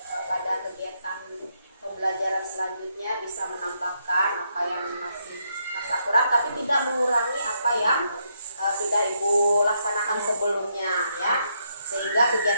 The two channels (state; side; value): inverted; both; correlation -0.77